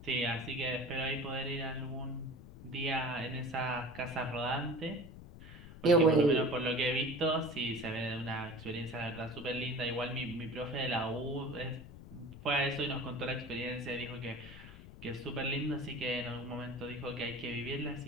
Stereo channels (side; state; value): left; noise; rumble, 15 dB below the sound